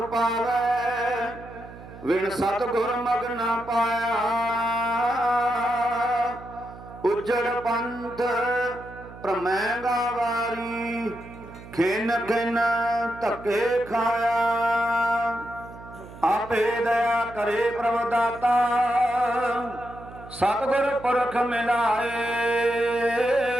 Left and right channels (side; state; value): right; noise; hum, 16 dB below the sound